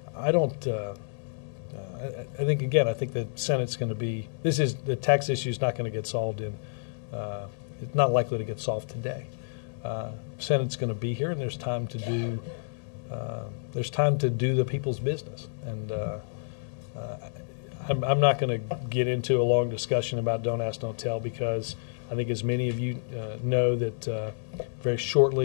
I think, again, I think the Senate's going to be, the tax issue is not going to get solved it's not likely to get solved today. Senate's going to be here, and there's time to do the people's business. And I'm not going to get into a long discussion about Don't Ask, Don't Tell, because I think, as many of you know, that very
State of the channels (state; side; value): silent; right; digital silence